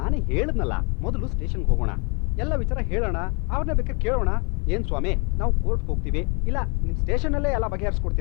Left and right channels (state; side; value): quieter; right; 33.8 dB